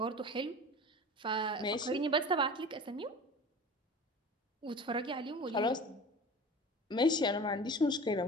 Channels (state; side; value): normal; both; correlation 0.37